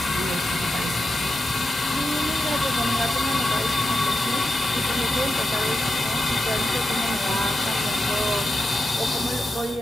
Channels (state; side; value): normal; both; correlation 0.89